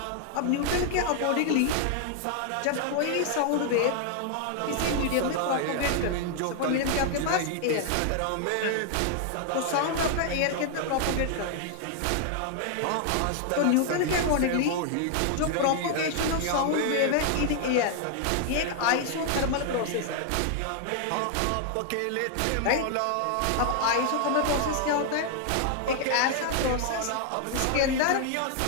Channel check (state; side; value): different; both; correlation 0.00